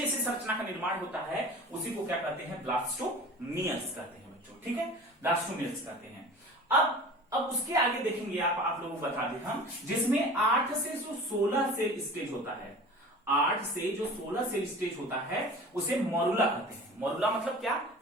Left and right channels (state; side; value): normal; both; correlation 0.40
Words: संरचना का निर्माण होता है, उसी को क्या कहते हैं, ब्लास्टोमियर्स कहते हैं बच्चों। ठीक है, ब्लास्टोमियर्स कहते हैं। अब उसके आगे देखेंगे आप लोगों को बता दें हम, जिसमें 8 से जो 16 सेल स्टेज होता है, 8 से जो 16 सेल स्टेज होता है उसे मॉरुला कहते हैं। मॉरुला मतलब क्या,